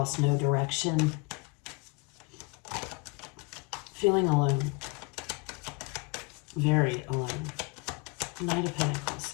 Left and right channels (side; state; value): right; quieter; 29.6 dB